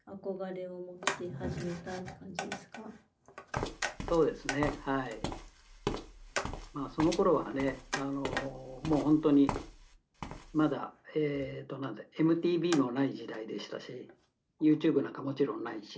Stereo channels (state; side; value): identical; both; correlation 1.00